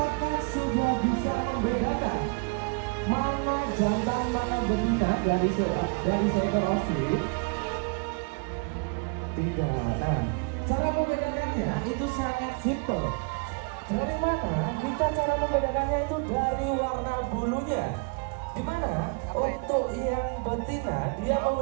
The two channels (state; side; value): quieter; left; 33.0 dB